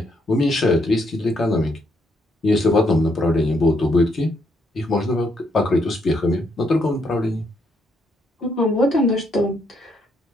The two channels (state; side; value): normal; both; correlation 0.75